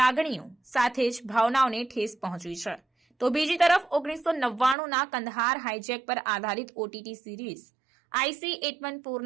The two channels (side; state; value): left; drops out; at 4.8 s